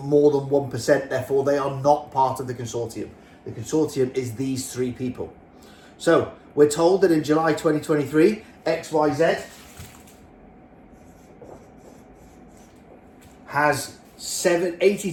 more than 1%. Therefore, they are not part of the consortium. The consortium is these three people. So we're told that in July 2023, XYZ has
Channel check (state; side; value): identical; both; correlation 1.00